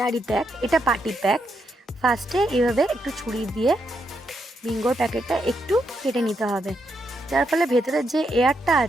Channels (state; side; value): normal; both; correlation 0.80